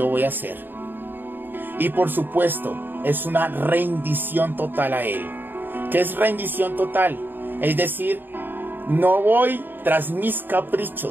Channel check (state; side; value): late; left; 0.093 ms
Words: voy a hacer. Y por supuesto, es una rendición total a Él. ¿Qué es rendición total? Es decir, no voy tras mis